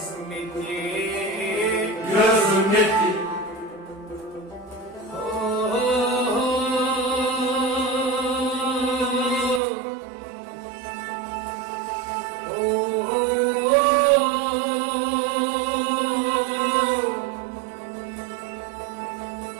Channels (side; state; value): left; drops out; at 9.6 s